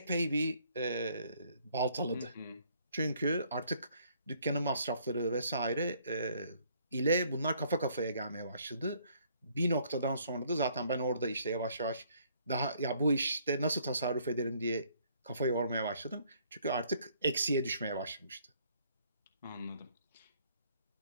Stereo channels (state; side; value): inverted; both; correlation -0.64